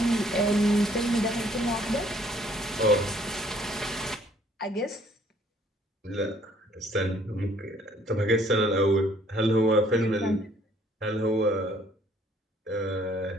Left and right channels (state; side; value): normal; both; correlation 0.62